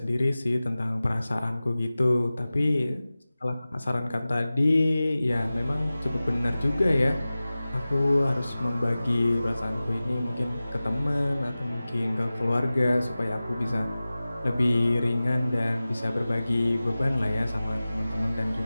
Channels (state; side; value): inverted; both; correlation -0.97